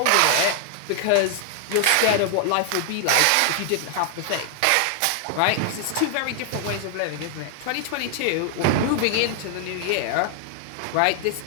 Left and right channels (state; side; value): different; both; correlation 0.00